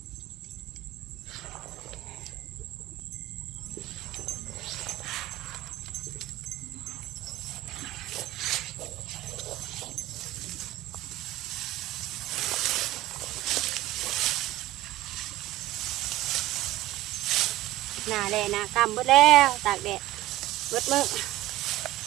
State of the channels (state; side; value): quieter; left; 16.4 dB